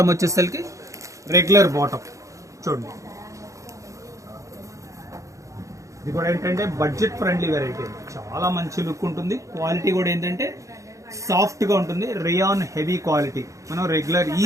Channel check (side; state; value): left; late; 0.15 ms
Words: వచ్చేసరికి రెగ్యులర్ బాటమ్ చూడండి. ఇది కూడా ఏంటంటే బడ్జెట్ ఫ్రెండ్లీ వెరైటీ, చాలా మంచి లుక్ ఉంటుంది. క్వాలిటీ కూడా ఏంటంటే సాఫ్ట్ గా ఉంటుంది, రేయాన్ హెవీ క్వాలిటీ. మనం రెగ్యులర్